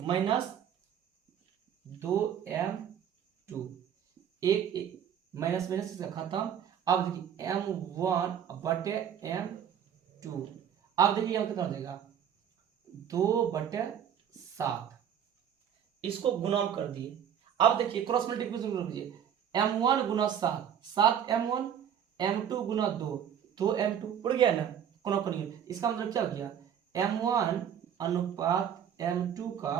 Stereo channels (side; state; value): left; quieter; 9.0 dB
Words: -2m2, एक माइनस माइनस से खत्म। अब देखिए m1 बटे m2, अब देखिए यहाँ कितना हो जाएगा 2/7, इसको गुना कर दिए। अब देखिए क्रॉस मल्टीप्लिकेशन कर दीजिए, m1 गुना 7, 7m1, m2 गुना 2, 2m2 उड़ गया ना, कोना कोनी, इसका मतलब क्या हो गया, m1 अनुपात m2 का